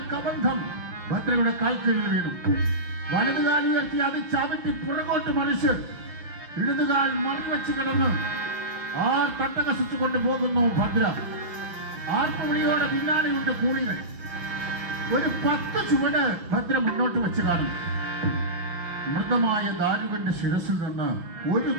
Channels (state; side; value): late; left; 6.0 ms